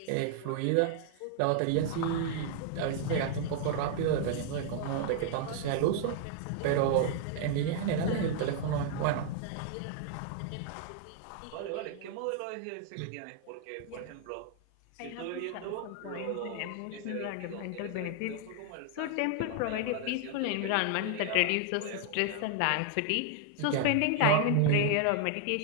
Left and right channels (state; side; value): different; both; correlation 0.00